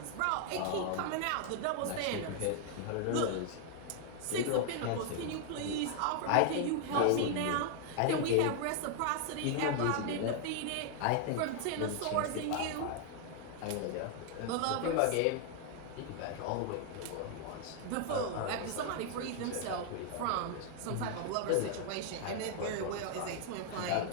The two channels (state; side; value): different; both; correlation 0.00